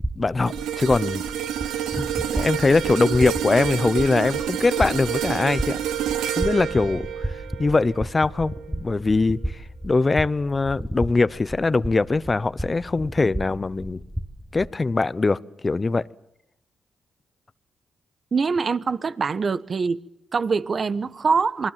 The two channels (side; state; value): both; normal; correlation 0.89